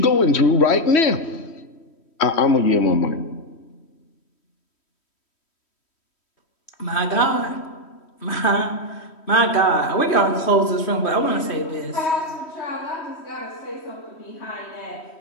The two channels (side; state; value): right; late; 3.1 ms